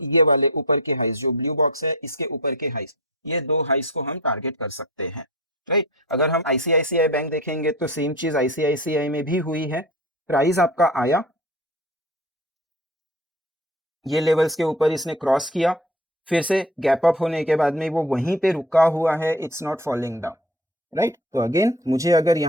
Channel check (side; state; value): both; normal; correlation 0.36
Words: ये वाले ऊपर के हाइस जो ब्लू बॉक्स है इसके ऊपर के हाइस, ये दो हाइस को हम टारगेट कर सकते हैं, राइट। अगर हम आईसीआईसीआई बैंक देखेंगे तो सेम चीज आईसीआईसीआई में भी हुई है, प्राइस आपका आया, ये लेवल्स के ऊपर इसने क्रॉस किया, फिर से गैप अप होने के बाद में वो वहीं पे रुका हुआ है, it's not falling down, right. तो अगेन मुझे अगर